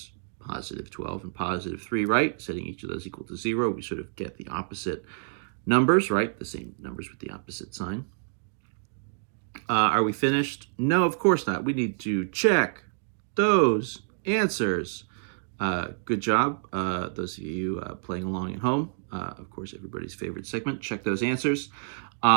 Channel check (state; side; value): silent; left; digital silence